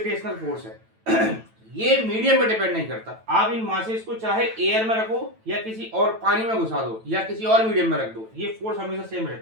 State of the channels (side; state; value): left; late; 9.0 ms